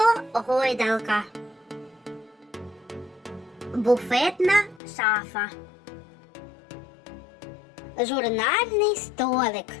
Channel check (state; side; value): drops out; right; at 4.8 s